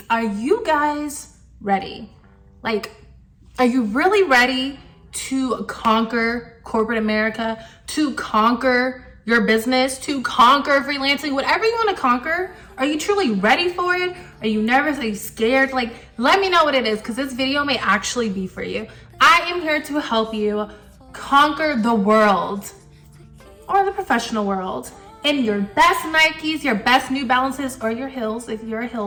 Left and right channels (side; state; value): both; identical; correlation 1.00